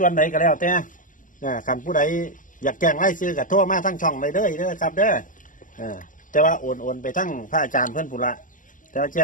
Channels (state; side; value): late; right; 0.38 ms